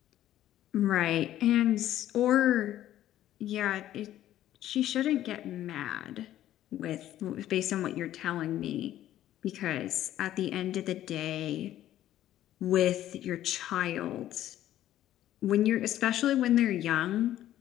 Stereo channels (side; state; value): right; quieter; 12.8 dB